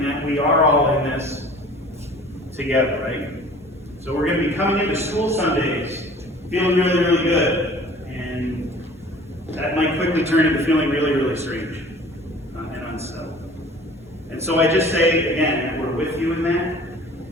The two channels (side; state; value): both; normal; correlation 0.47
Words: that we are all in this together, right? So we're going to be coming into school Sundays feeling really, really good. And that might quickly turn into feeling really, really strange and unsettled. And so I just say, again, that we're with you in